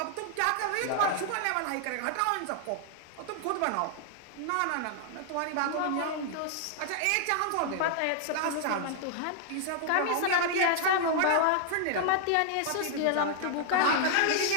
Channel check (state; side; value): different; both; correlation -0.01